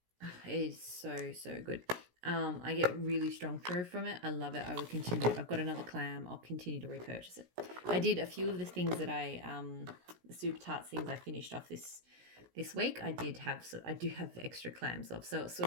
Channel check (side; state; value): left; late; 17 ms